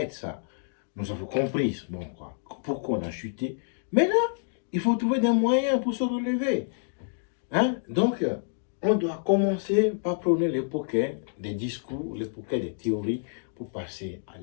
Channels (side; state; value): right; silent; digital silence